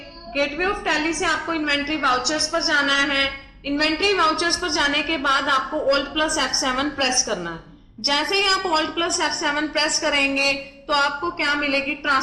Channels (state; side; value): identical; both; correlation 1.00